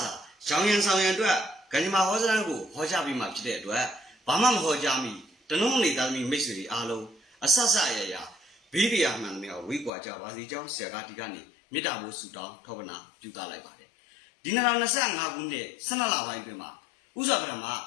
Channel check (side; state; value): right; drops out; at 9.9 s